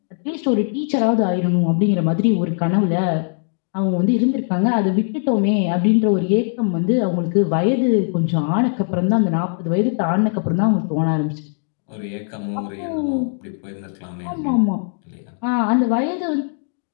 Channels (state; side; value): silent; right; 66 dB below the other